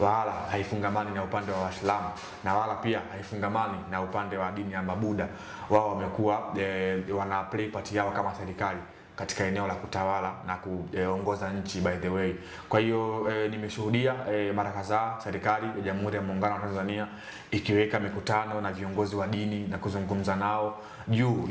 haifungamani na upande wa Waislamu, na wala pia haifungamani na upande wa dini ya Mabuda. Wao wamekuwa wana play part yao kama serikali katika eneo la kutawala na kuongoza nchi, by the way. Kwa hiyo nimeshuhudia mara kadhaa serikali ya Jamhuri ya Muungano wa Tanzania ikiweka mikutano na viongozi wa dini na kuzungumza nao juu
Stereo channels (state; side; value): identical; both; correlation 1.00